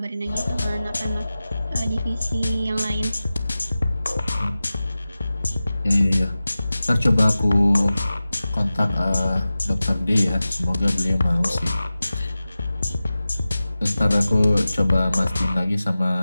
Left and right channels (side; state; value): both; inverted; correlation -0.96